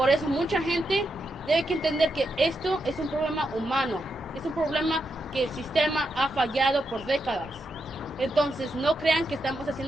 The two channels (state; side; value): normal; both; correlation 0.84